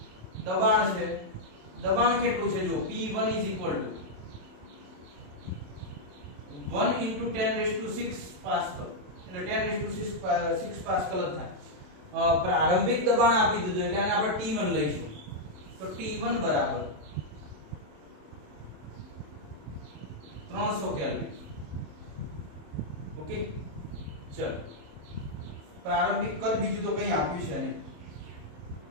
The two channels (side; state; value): left; late; 27 ms